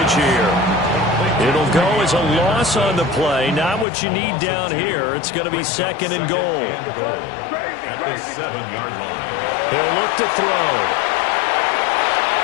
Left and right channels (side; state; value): right; drops out; at 3.9 s